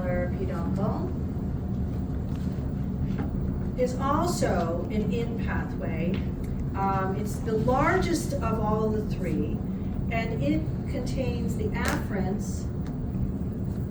peduncle is also an in pathway. It's the largest of all the three, and it contains the afferents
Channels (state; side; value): identical; both; correlation 1.00